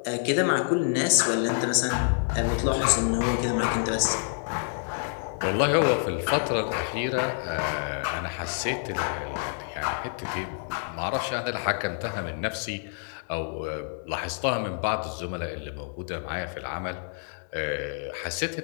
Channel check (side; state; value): right; silent; digital silence